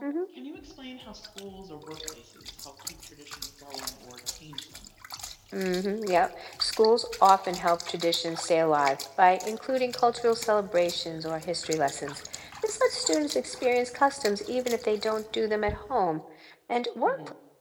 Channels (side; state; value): both; identical; correlation 1.00